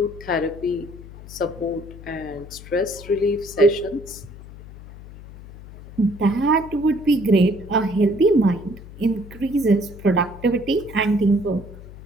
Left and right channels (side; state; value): left; noise; hum, 16 dB below the sound